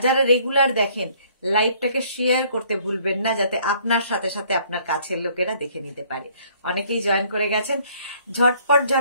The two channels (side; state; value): both; inverted; correlation -0.61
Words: যারা রেগুলার দেখেন, লাইভটাকে শেয়ার করতে ভুলবেন না, যাতে আপনার সাথে সাথে আপনার কাছের লোকেরা দেখে নিতে পারে। অনেকেই জয়েন করে গেছেন, ঝটপট